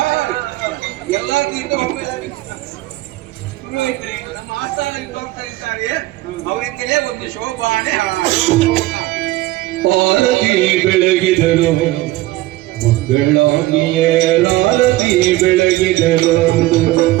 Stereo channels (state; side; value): quieter; left; 17.5 dB